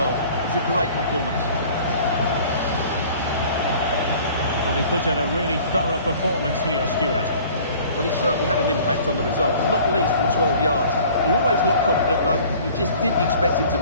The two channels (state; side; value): inverted; both; correlation -0.49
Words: It was a great performance. Well, he put in a really thorough performance here, Stuart. Well, he certainly had an impact on the result, not least from 12 yards. He always looked confident, though. You just didn't expect him to